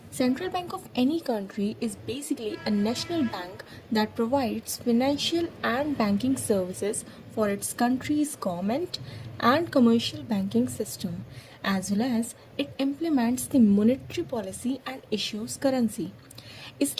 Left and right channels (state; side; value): identical; both; correlation 1.00